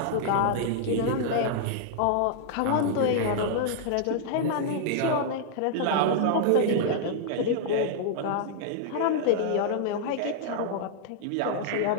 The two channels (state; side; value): different; both; correlation -0.01